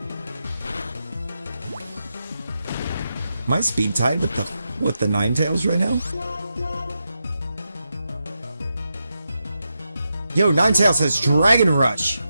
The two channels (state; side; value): inverted; both; correlation -0.87